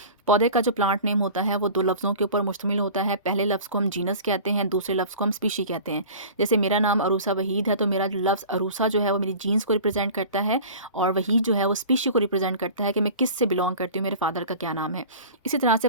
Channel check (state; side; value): inverted; both; correlation -0.39